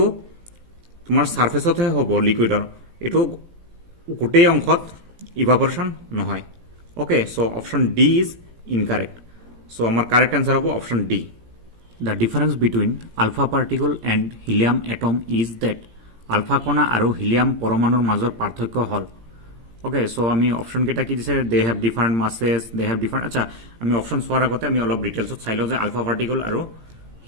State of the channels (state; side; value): late; left; 17 ms